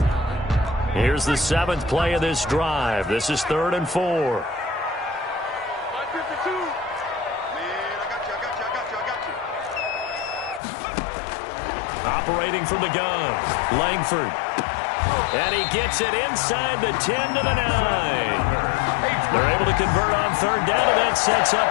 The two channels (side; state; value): right; drops out; at 10.6 s